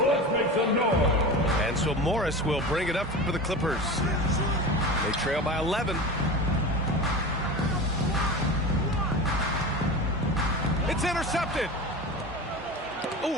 Let's make some noise. And so Morris will bring it up for the Clippers. They trail by 11. It's intercepted.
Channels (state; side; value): normal; both; correlation 0.29